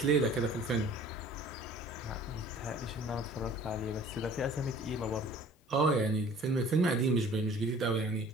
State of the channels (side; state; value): both; normal; correlation 0.49